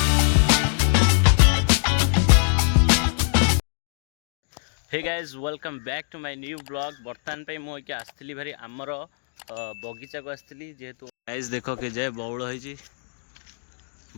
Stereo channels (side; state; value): right; silent; digital silence